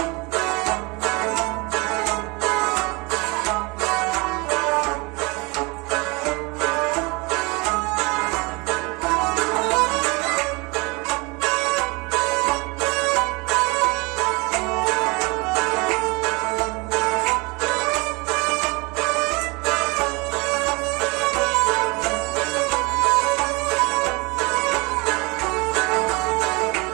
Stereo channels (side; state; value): left; quieter; 27.1 dB